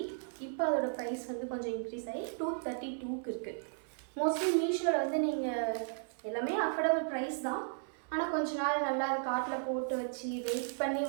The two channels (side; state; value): left; silent; 54 dB below the other